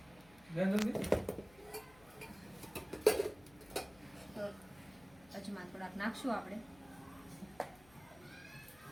તો અજમા થોડાક નાખશું આપણે.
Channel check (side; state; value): left; noise; hum, 24 dB below the sound